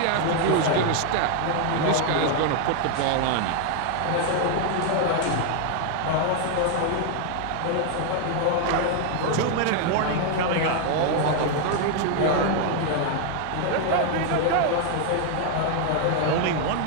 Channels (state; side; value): different; both; correlation 0.00